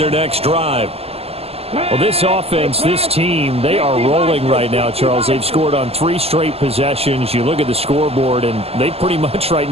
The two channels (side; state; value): left; late; 0.29 ms